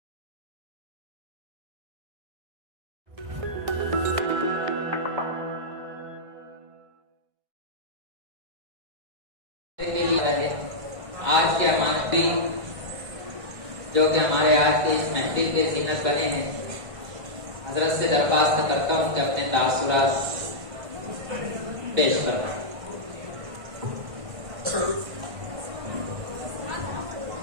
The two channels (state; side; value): late; left; 1.5 ms